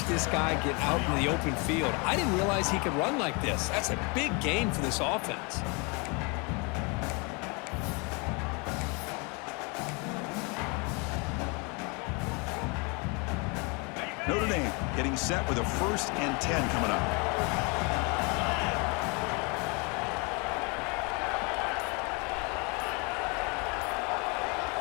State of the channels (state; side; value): quieter; right; 31.1 dB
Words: this guy get out in the open field. I didn't realize he could run like this. That's a big gain for this offense. Notre Dame getting set with a 1st and 10 coming up.